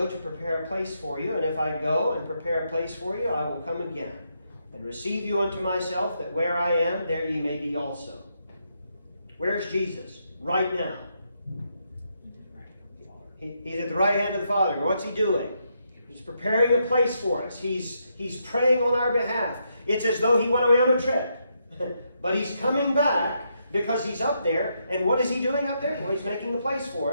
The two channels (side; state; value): both; inverted; correlation -0.79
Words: to prepare a place for you, and if I go and prepare a place for you, I will come again and receive you unto myself, that where I am, there ye may be also." Where's Jesus? Right now. He's at the right hand of the Father. What's he doing? He's preparing a place for us. He's praying on our behalf. It's as though he went away on a trip. But he's coming back because he's up there. And what is he doing up there? Well, he's making a place for